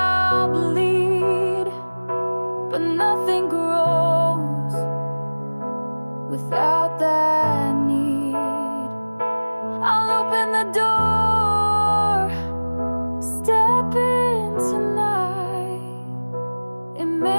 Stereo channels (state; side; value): inverted; both; correlation -1.00